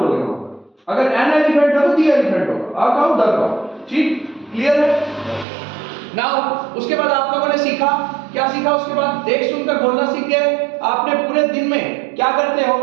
वहां पर. अगर एन एलिफेंट है तो दी एलिफेंट होगा. आ काऊ, दा काऊ. ठीक, क्लियर है? नाउ उसके बाद आप लोगों ने सीखा, क्या सीखा उसके बाद? देख सुनकर बोलना सीख गए. आपने पूरे दिन में क्या करते हो?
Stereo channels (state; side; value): drops out; left; at 5.5 s